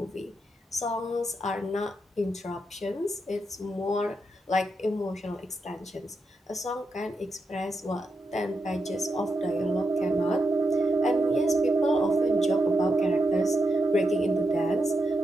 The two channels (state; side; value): normal; both; correlation 0.85